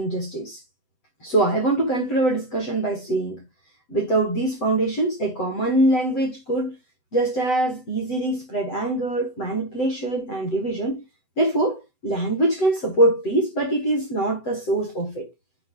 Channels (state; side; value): late; right; 7.9 ms